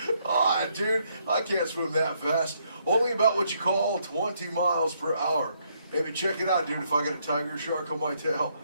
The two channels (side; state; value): both; inverted; correlation -0.72